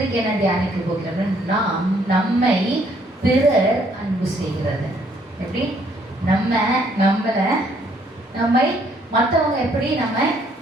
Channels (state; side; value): normal; both; correlation 0.66